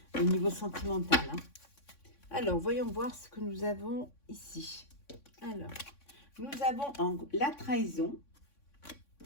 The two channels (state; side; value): late; right; 3.6 ms